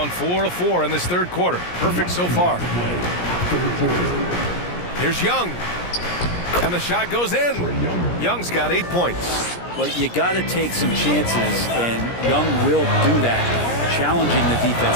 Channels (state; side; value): late; right; 17 ms